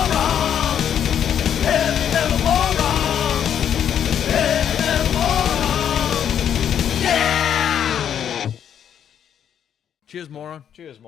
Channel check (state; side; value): quieter; right; 9.1 dB